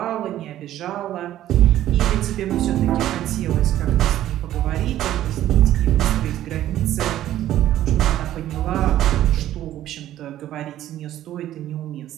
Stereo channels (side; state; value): left; quieter; 12.9 dB